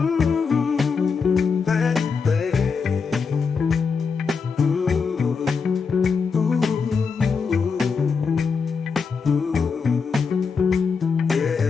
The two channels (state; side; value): quieter; right; 5.4 dB